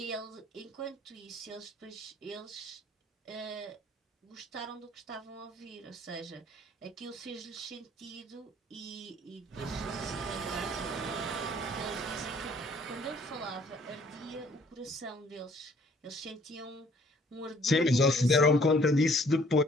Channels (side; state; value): both; normal; correlation 0.59